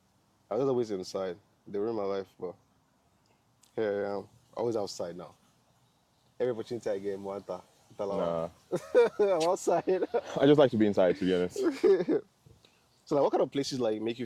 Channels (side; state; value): both; identical; correlation 1.00